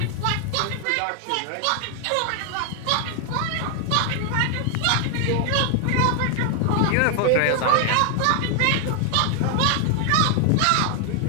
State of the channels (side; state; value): both; different; correlation 0.00